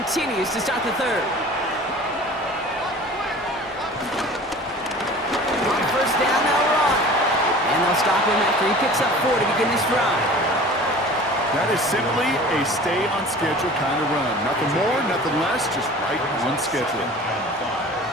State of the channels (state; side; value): normal; both; correlation 0.42